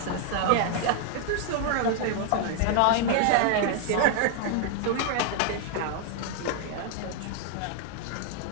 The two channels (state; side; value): different; both; correlation 0.00